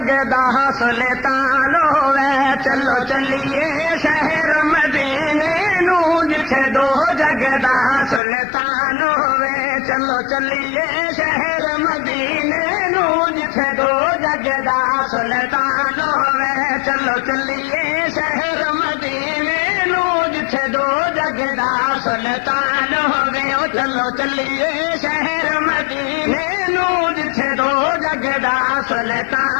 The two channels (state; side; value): drops out; right; at 8.2 s